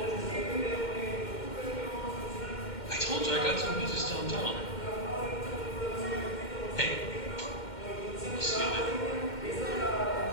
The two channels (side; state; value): right; late; 2.1 ms